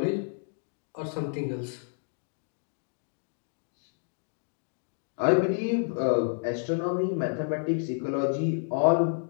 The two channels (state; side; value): silent; right; digital silence